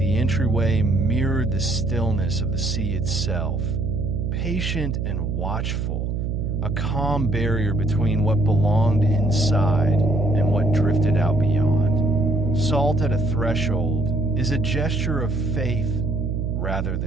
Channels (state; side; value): noise; right; hum, 1 dB below the sound